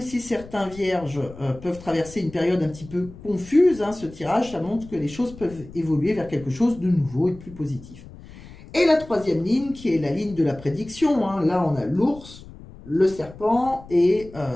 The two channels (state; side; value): noise; left; rumble, 18 dB below the sound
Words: si certains vierges peuvent traverser une période un petit peu confuse, ce tirage, ça montre que les choses peuvent évoluer vers quelque chose de nouveau et de plus positif. Et la troisième ligne, qui est la ligne de la prédiction, là on a l'ours, le serpent et